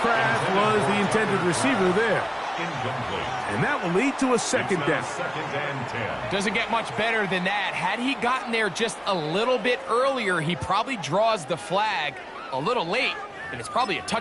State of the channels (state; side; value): identical; both; correlation 1.00